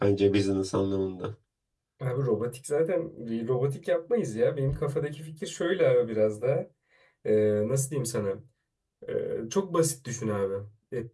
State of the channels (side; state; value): both; identical; correlation 1.00